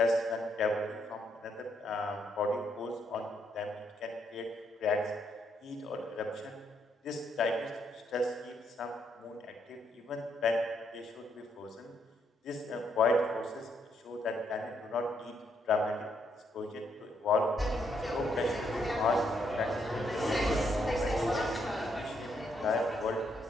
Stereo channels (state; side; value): normal; both; correlation 0.75